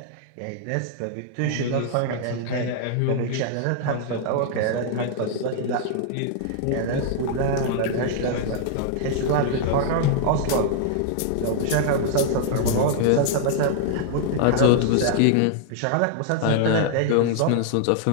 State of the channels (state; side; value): different; both; correlation -0.01